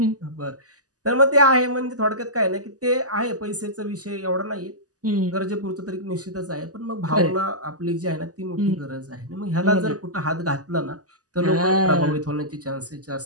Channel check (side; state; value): left; late; 0.67 ms